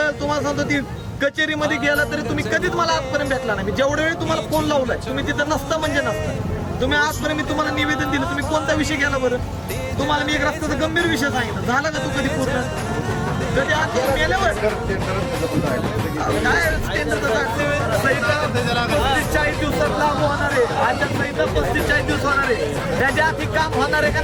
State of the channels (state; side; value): identical; both; correlation 1.00